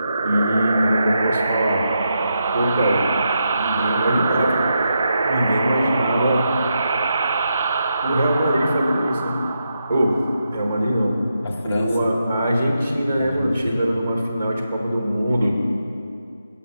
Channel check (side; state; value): both; inverted; correlation -0.84